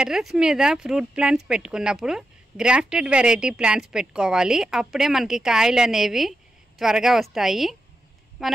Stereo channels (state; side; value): normal; both; correlation 0.88